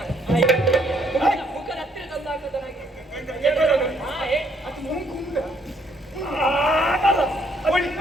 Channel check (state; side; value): normal; both; correlation 0.68